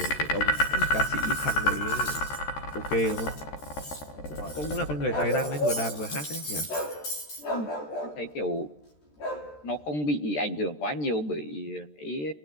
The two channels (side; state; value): right; late; 13 ms